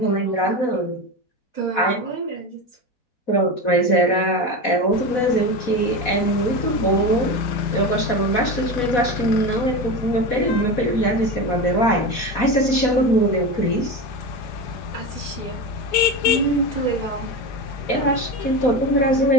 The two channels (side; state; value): right; late; 4.1 ms